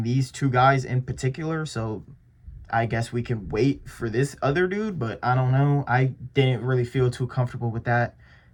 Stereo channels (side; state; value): both; identical; correlation 1.00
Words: these 2 guys in particular, so I guess we can wait for this other dude, but I don't know. I didn't really feel too comfortable with that.